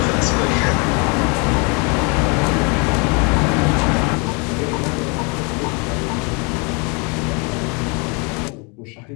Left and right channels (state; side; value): quieter; right; 32.6 dB